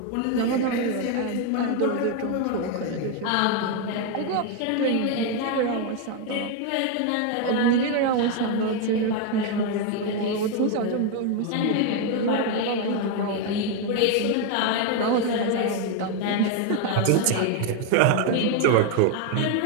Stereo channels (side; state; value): both; different; correlation 0.01